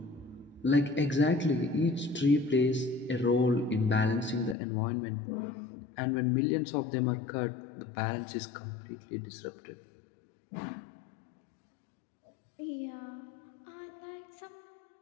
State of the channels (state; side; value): drops out; right; at 4.5 s